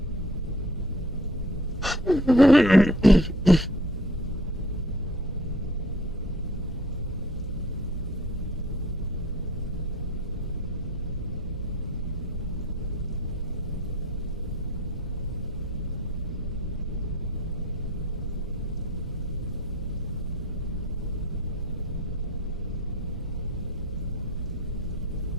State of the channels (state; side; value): normal; both; correlation 0.51